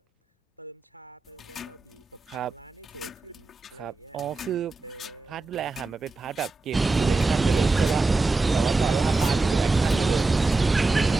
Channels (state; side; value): quieter; left; 3.5 dB